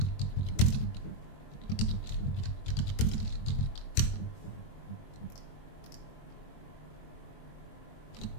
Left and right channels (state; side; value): late; right; 21 ms